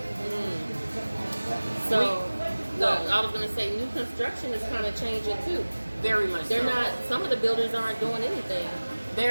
So, I was going to say, new construction is kind of changing too. Very much. They're not. Some of the builders aren't doing anything.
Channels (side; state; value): both; inverted; correlation -1.00